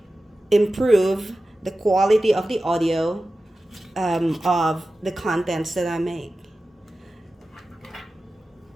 improve the quality of the audio of the contents that I make.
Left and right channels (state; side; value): normal; both; correlation 0.94